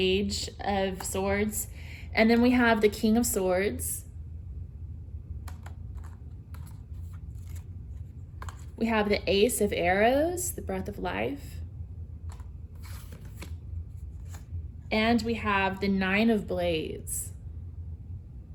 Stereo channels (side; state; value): both; identical; correlation 1.00